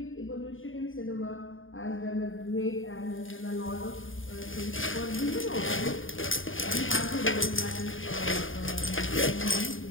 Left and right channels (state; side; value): late; right; 0.58 ms